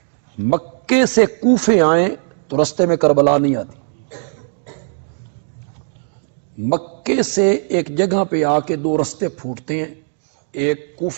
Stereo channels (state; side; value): silent; left; 67 dB below the other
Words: سے کوفے آئیں تو رستے میں کربلا نہیں آتی. مکے سے ایک جگہ پہ آ کے 2 رستے پھوٹتے ہیں، ایک